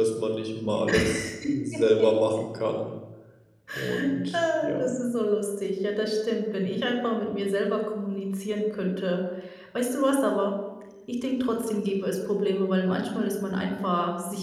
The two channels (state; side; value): identical; both; correlation 1.00